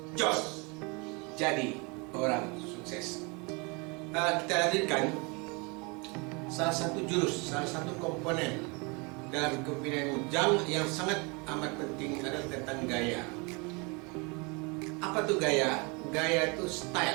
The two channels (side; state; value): left; quieter; 30.1 dB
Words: Jos. Jadi orang sukses. Kita hadirkan salah satu jurus, salah satu komponen dalam kepemimpinan Jang yang sangat amat penting adalah tentang gaya. Apa tuh gaya? Gaya itu